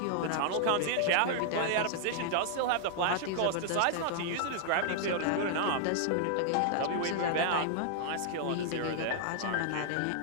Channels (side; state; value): both; different; correlation -0.01